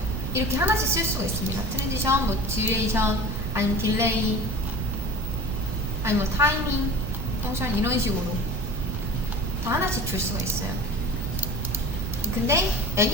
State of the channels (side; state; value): right; noise; rumble, 3 dB below the sound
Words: 이렇게 하나씩 쓸 수가 있습니다. 트랜지션, 뭐 듀레이션, 아니면 딜레이, 아니면 뭐 타이밍, 펑션 이런 식으로 다 하나씩 줄 수가 있어요. 근데